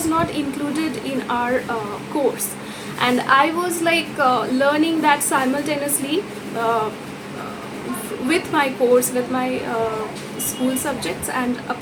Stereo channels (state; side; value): identical; both; correlation 1.00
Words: not included in our course, and I was like learning that simultaneously with my course, with my school subjects, and